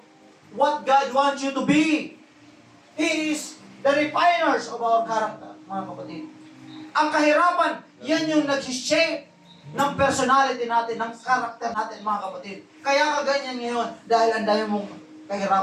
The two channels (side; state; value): both; identical; correlation 1.00